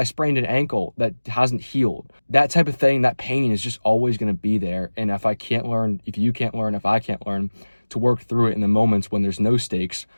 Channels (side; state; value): both; inverted; correlation -1.00